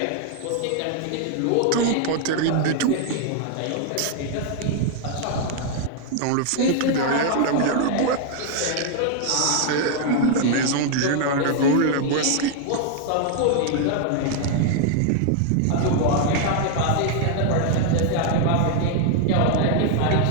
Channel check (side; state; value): both; different; correlation 0.00